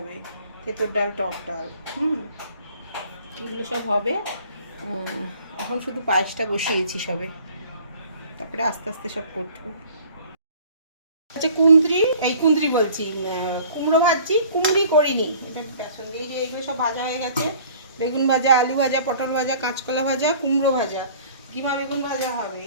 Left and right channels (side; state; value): both; inverted; correlation -0.50